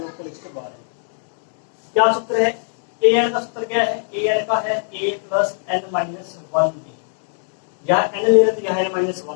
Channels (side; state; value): right; silent; digital silence